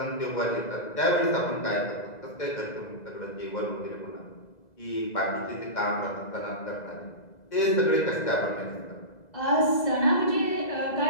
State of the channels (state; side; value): late; right; 2.0 ms